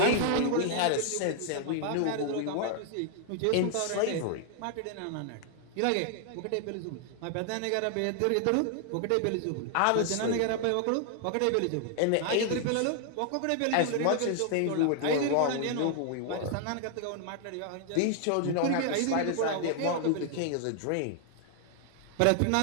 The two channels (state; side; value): different; both; correlation 0.00